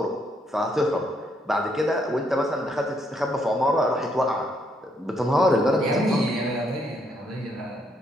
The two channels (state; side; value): normal; both; correlation 0.73